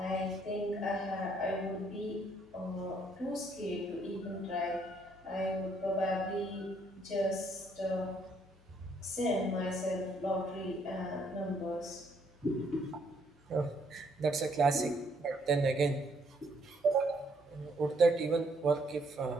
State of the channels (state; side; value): normal; both; correlation 0.69